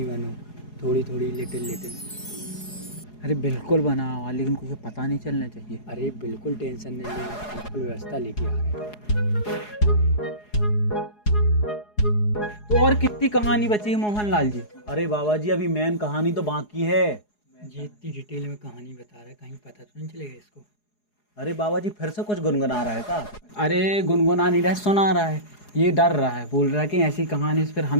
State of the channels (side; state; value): right; late; 4.8 ms